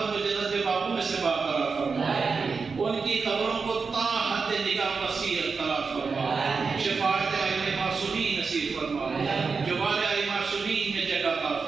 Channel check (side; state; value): left; quieter; 4.9 dB